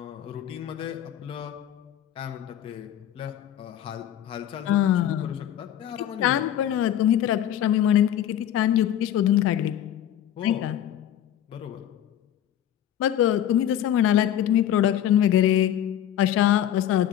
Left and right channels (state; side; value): quieter; right; 11.0 dB